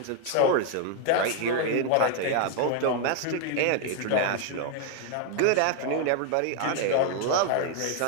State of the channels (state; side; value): different; both; correlation 0.00